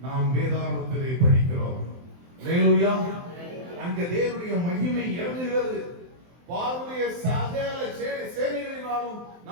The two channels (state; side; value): late; left; 23 ms